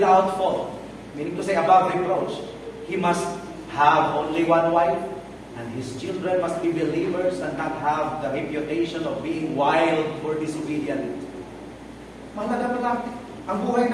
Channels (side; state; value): both; identical; correlation 1.00